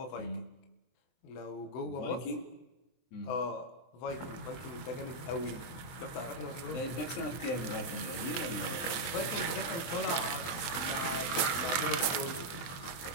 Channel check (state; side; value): late; right; 23 ms